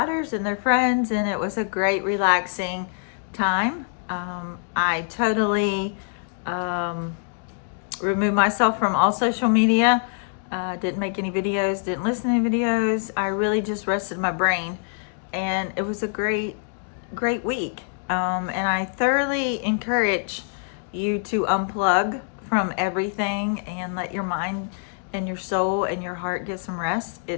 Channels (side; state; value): right; silent; digital silence